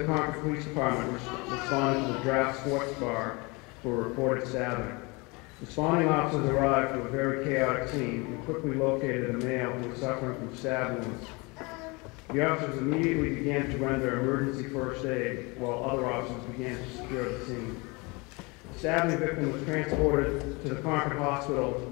Concord Police Department responded to the Draft Sports Bar for a reported stabbing. Responding officers arrived to a very chaotic scene and quickly located a male who was suffering from stab wounds. The officers immediately began to render emergency first aid, while other officers began to secure the scene. The stabbing victim was transported to the Concord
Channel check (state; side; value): quieter; right; 27.2 dB